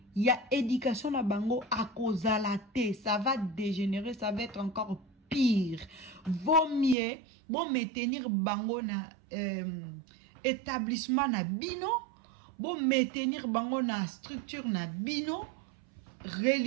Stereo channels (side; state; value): left; drops out; at 7.0 s